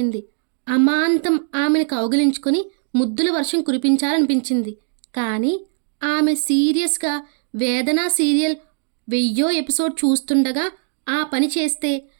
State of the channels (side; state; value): left; silent; digital silence